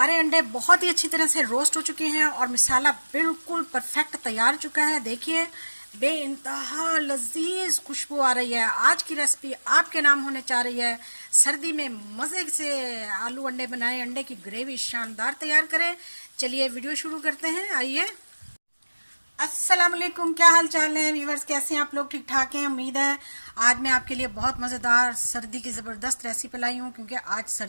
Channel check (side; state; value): both; inverted; correlation -1.00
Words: अंडे बहुत ही अच्छी तरह से रोस्ट हो चुके हैं और मसाला बिल्कुल परफेक्ट तैयार हो चुका है। देखिए बेइंतहा लजीज खुशबू आ रही है। आज की रेसिपी आपके नाम होने जा रही है। सर्दी में मज़े से आलू अंडे बनाएं, अंडे की ग्रेवी शानदार तैयार करें। चलिए वीडियो शुरू करते हैं, आइए। अस्सलाम वालेकुम, क्या हाल चाल है व्यूवर्स, कैसे हैं आप लोग? ठीक ठाक हैं, उम्मीद है। आज मैं आपके लिए बहुत मज़ेदार सर्दी की ज़बरदस्त रेसिपी लाई हूँ, क्योंकि आज